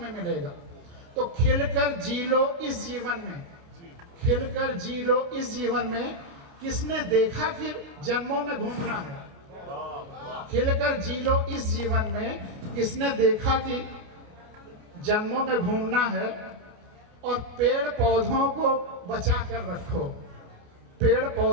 मिलेगा। तो खिलकर जी लो इस जीवन में, खिलकर जी लो इस जीवन में। किसने देखा कि जन्मों में घूमना है, खिलकर जी लो इस जीवन में। किसने देखा कि जन्मों में घूमना है। और पेड़ पौधों को बचा कर रखो, पेड़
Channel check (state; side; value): late; left; 28 ms